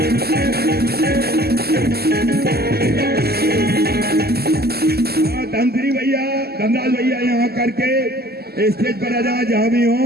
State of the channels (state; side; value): late; left; 0.46 ms